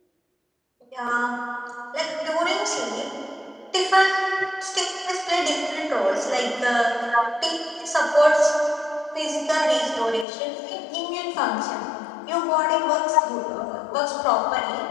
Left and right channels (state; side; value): drops out; right; at 10.2 s